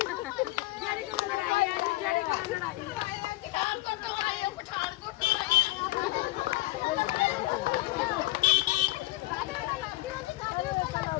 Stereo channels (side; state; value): right; quieter; 19.2 dB